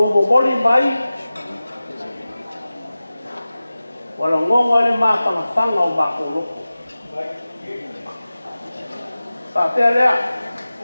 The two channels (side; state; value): both; inverted; correlation -0.96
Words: boli mai wala ngonga le mawhangawhanga o makoro. Pātea lea,